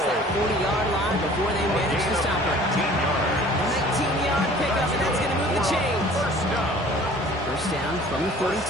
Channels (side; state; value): both; normal; correlation 0.49